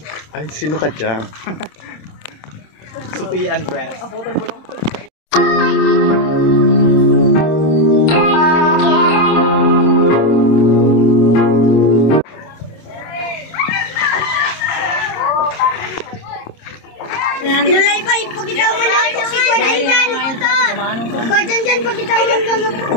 Ay, sino ka dyan? Supi Andres. Abutan mo lang. Nulay pa, ipakita mo na ito si Kuya dyan. Kuya dyan, pakita mo na ito.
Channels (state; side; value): late; right; 26 ms